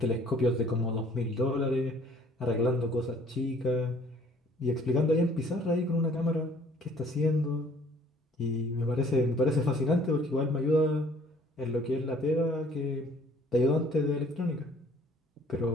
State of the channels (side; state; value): both; normal; correlation 0.56